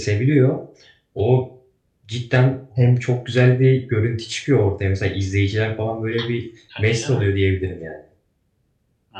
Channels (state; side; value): identical; both; correlation 1.00